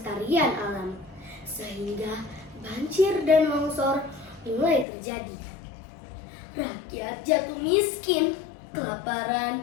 alam, sehingga banjir dan longsor mulai terjadi. Rakyat jatuh miskin, kelaparan,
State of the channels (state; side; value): drops out; right; at 4.9 s